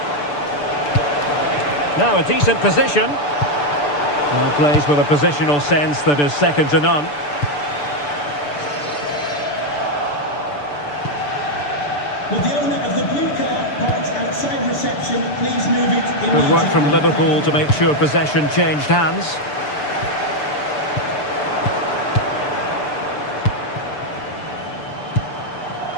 Now a decent position. Well, plays with a positional sense that is second to none. Will the owner of the blue car parks outside reception please move it immediately? Good work from Liverpool to make sure possession changed hands.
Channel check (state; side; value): late; right; 6.8 ms